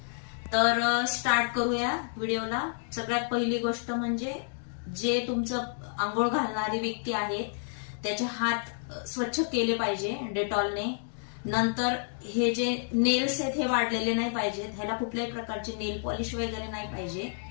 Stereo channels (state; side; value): silent; right; 58 dB below the other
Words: तर स्टार्ट करूया व्हिडिओला। सगळ्यात पहिली गोष्ट म्हणजे जे तुमचं अंघोळ घालणारी व्यक्ती आहे त्याचे हात स्वच्छ केले पाहिजे डेटॉलने। नंतर हे जे नेल्स आहेत हे वाढलेले नाही पाहिजेत, ह्याला कुठल्याही प्रकारचे नेल पॉलिश वगैरे नाही पाहिजे,